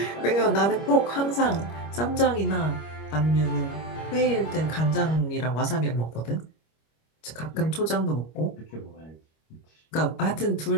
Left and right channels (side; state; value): right; late; 25 ms